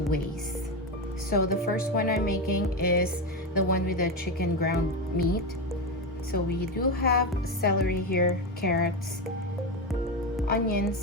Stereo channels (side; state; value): both; normal; correlation 0.14